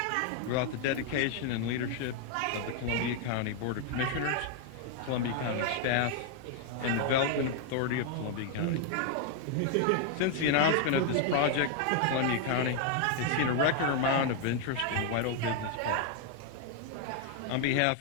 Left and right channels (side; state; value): both; different; correlation 0.00